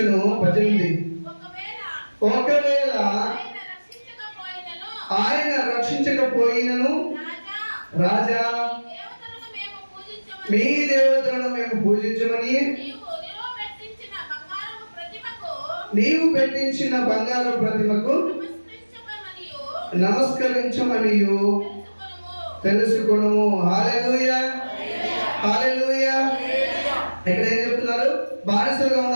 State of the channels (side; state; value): both; inverted; correlation -1.00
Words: 18 ఒకవేళ ఆయన రక్షించకపోయినను రాజా మీ దేవతలను మేము పూజించమని నీవు పెట్టించిన బంగారు ప్రతిమకు నమస్కరించమనియు తెలుసుకొనుము. హల్లెలూయా, హల్లెలూయా. ఇక్కడ ఏం చెప్తున్నారు? బానిసలుగా